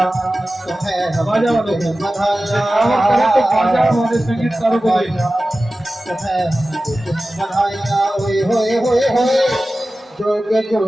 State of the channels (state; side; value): normal; both; correlation 0.95